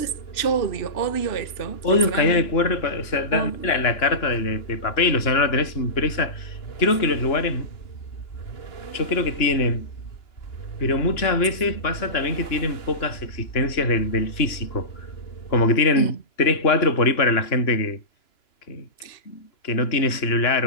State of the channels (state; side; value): late; right; 2.9 ms